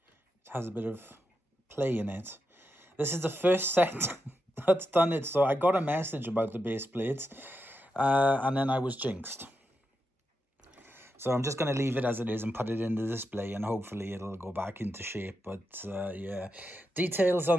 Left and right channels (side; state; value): both; normal; correlation 0.86